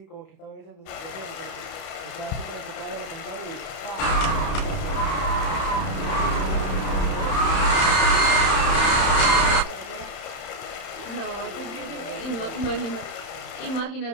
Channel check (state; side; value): late; right; 31 ms